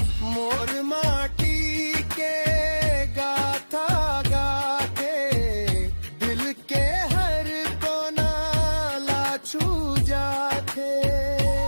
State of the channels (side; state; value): both; inverted; correlation -1.00